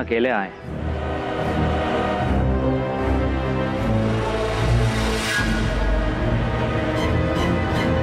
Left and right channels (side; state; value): both; identical; correlation 1.00